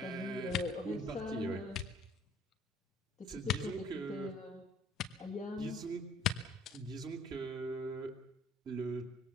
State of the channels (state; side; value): normal; both; correlation 0.57